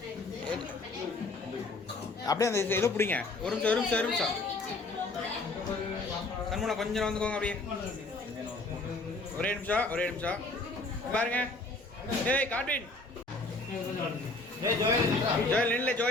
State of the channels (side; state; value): right; quieter; 3.2 dB